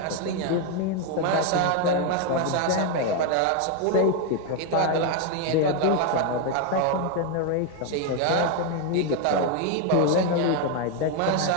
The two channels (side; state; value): both; different; correlation 0.01